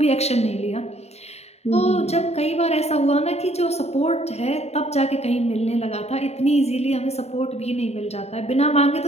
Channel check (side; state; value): right; late; 0.31 ms